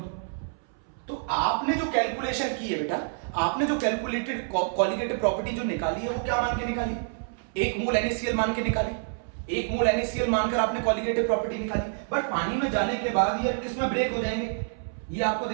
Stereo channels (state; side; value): silent; left; 60 dB below the other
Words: तो आपने जो कैलकुलेशन की है बेटा, आपने जो कैलकुलेटेड कॉलिगेटिव प्रॉपर्टी जो निकाली है वो क्या मान के निकाली? एक मोल NaCl मान के निकाली। एक मोल NaCl मानकर आपने कॉलिगेटिव प्रॉपर्टी निकाली, बट पानी में जाने के बाद ये किसमें ब्रेक हो जाएंगे? ये आपको